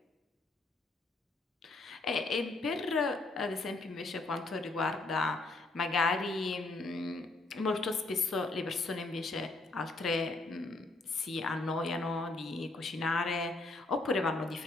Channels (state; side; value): quieter; right; 3.2 dB